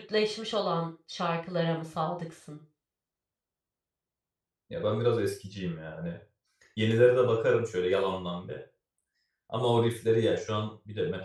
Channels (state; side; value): identical; both; correlation 1.00